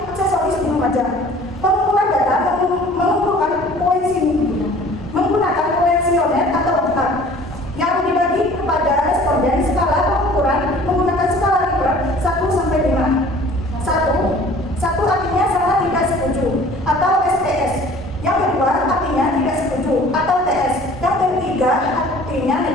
aksesoris di Lumajang. Pengumpulan data menggunakan kuesioner atau angka yang dibagi kepada responden. Skala pengukuran menggunakan skala Likert 1 sampai 5. 1 artinya sangat tidak setuju atau STS. Yang kedua artinya tidak setuju atau TS. Yang ketiga artinya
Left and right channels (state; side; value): normal; both; correlation 0.49